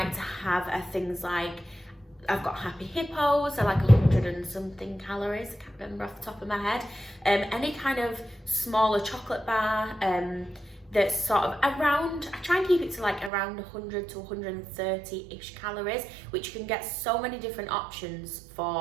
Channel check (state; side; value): drops out; left; at 13.3 s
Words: to have are things like, I've got Happy Hippos, I like 100 and something calories, I can't remember off the top of my head. Any kind of smaller chocolate bar that's sort of around, I try and keep it to like around 100 to 130-ish calories, which you can get so many different options